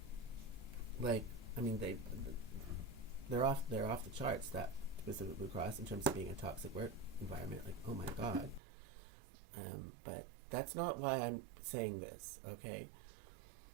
off the charts, that Pacific Blue Cross, in terms of being a toxic work environment. Like, oh my God. But that's not why I'm saying this, okay?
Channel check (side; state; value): left; drops out; at 8.6 s